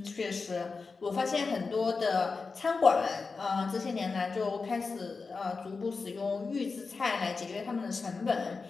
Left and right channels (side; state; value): right; quieter; 4.4 dB